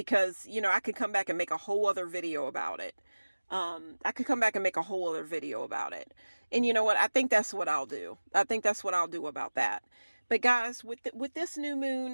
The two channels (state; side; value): inverted; both; correlation -1.00